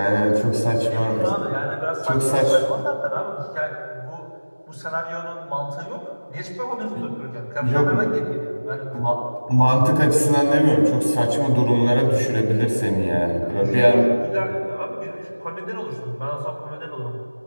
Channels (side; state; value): both; inverted; correlation -1.00